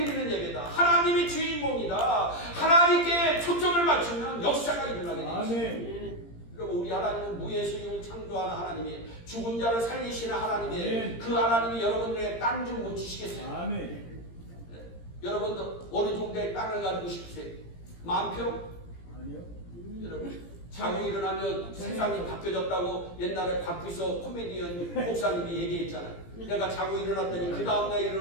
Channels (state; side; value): late; right; 17 ms